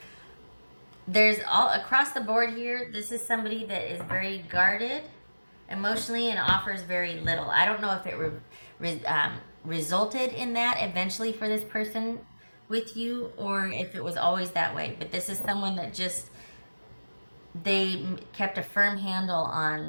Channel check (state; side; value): inverted; both; correlation -1.00